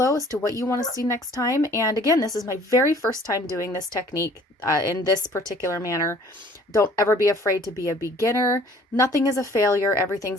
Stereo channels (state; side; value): normal; both; correlation 0.54